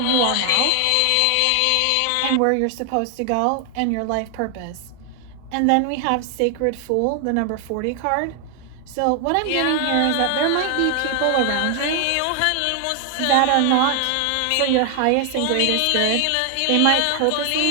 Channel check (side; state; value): both; different; correlation 0.00